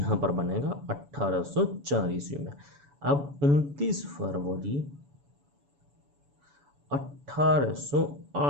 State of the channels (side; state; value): left; late; 7.0 ms